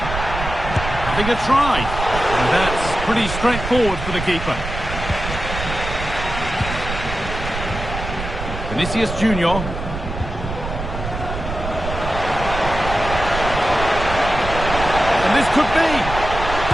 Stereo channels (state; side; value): noise; right; rumble, 7 dB below the sound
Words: Having a try. And that's pretty straightforward for the keeper. Vinicius Junior. And this could be.